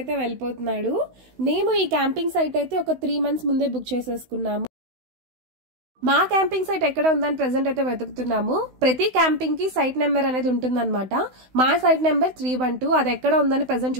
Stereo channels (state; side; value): late; left; 16 ms